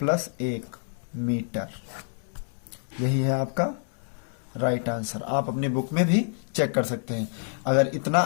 1 मीटर। यही है आपका राइट आंसर। आप अपनी बुक में भी चेक कर सकते हैं। अगर इतना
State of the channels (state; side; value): silent; right; 60 dB below the other